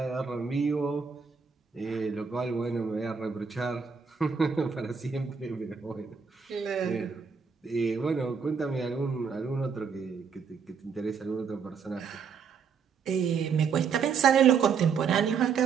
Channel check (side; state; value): left; quieter; 6.2 dB